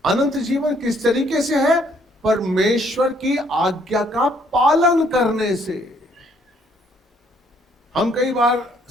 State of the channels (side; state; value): both; normal; correlation 0.66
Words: अनंत जीवन किस तरीके से है? परमेश्वर की आज्ञा का पालन करने से। हम कई बार